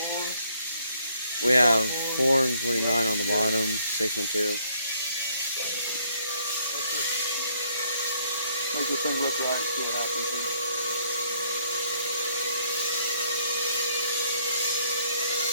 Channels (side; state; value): both; inverted; correlation -0.67